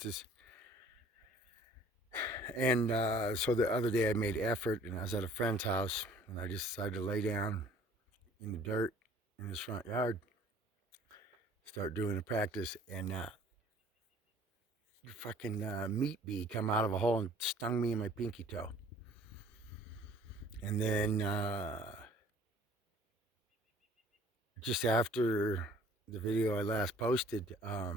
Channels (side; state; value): both; normal; correlation 0.53